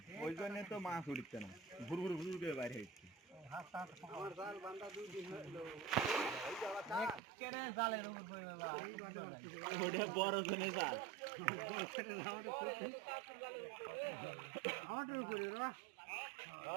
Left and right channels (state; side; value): drops out; left; at 7.2 s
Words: ওই জন্য তো মাছ উঠছে না ঘুর ঘুর ঘুর করে বাইরে হচ্ছে জালের উপর বড় জনে জাল